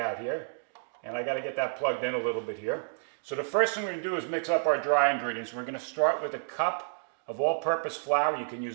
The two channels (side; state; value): left; silent; digital silence